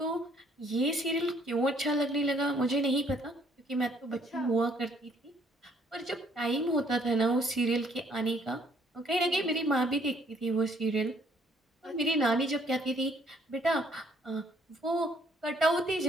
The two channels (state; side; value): normal; both; correlation 0.64